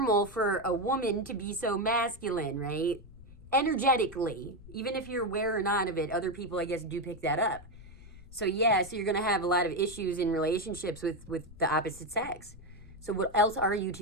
for a woman to be so masculine, right? Energetically, even if you're aware or not of it, other people, I guess, do pick that up. So yeah, so you're going to have a lot of issues in relationships with the opposite sex. So what else are you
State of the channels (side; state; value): left; noise; rumble, 19 dB below the sound